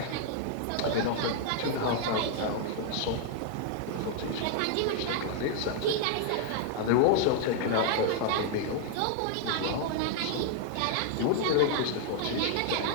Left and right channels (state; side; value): different; both; correlation 0.00